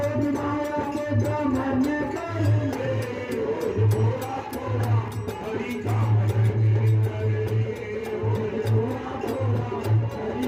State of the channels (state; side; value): identical; both; correlation 1.00